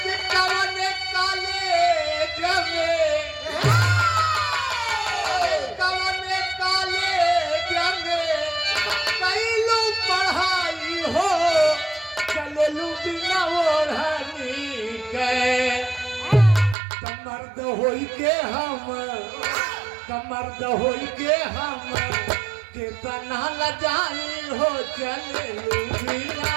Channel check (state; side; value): drops out; left; at 16.8 s